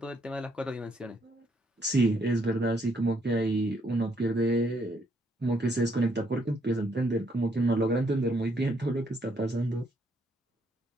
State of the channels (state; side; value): normal; both; correlation 0.72